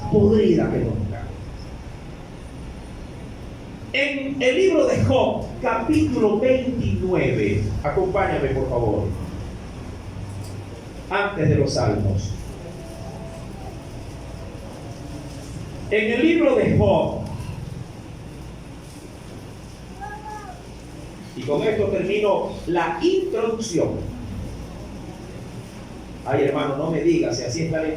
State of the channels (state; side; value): identical; both; correlation 1.00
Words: podrida que nunca. En el libro de Job, capítulo 29, acompáñame por favor, antes de los Salmos. En el libro de Job, y con esto termino la introducción. Ay, hermano, no me digas, si así está la